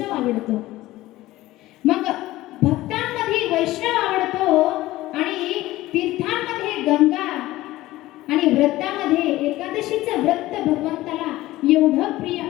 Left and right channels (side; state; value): right; quieter; 17.0 dB